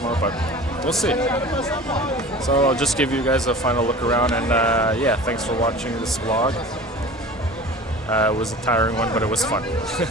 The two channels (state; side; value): normal; both; correlation 0.39